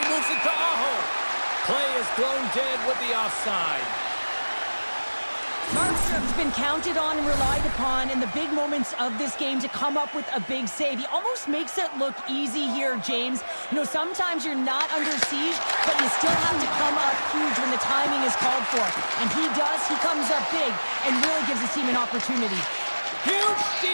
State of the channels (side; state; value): both; inverted; correlation -1.00